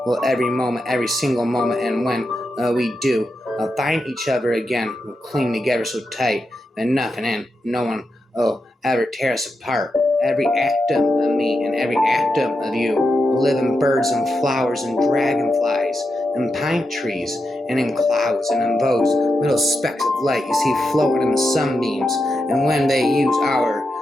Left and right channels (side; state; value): both; normal; correlation 0.87